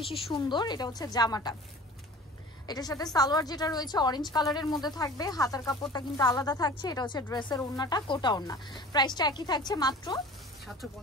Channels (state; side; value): normal; both; correlation 0.42